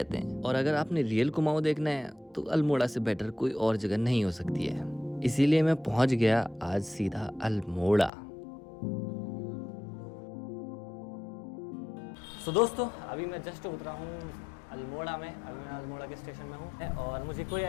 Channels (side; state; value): right; drops out; at 8.1 s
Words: हैं। और अगर आपने रियल कुमाऊं देखना है तो अल्मोड़ा से बेटर कोई और जगह नहीं हो सकती है। इसीलिए मैं पहुंच गया आज सीधा अल्मोड़ा। तो दोस्तों अभी मैं जस्ट उतरा हूँ अल्मोड़ा में। अभी मैं अल्मोड़ा के स्टेशन में हूँ और मुझे कोई